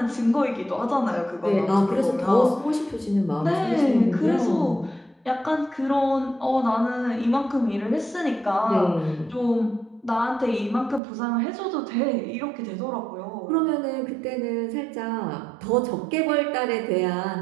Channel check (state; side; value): drops out; left; at 11.0 s